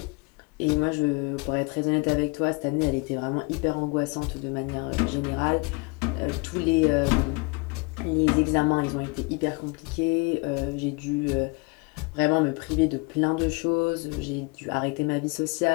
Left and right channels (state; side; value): quieter; right; 28.9 dB